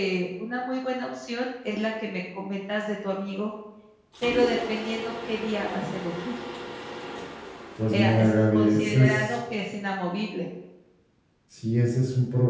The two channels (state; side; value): identical; both; correlation 1.00